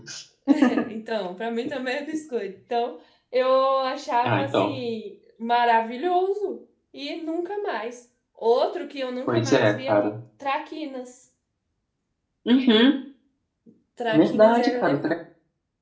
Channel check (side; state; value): both; identical; correlation 1.00